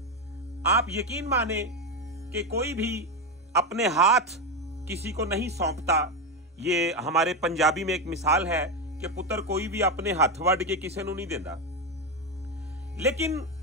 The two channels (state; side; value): normal; both; correlation 0.11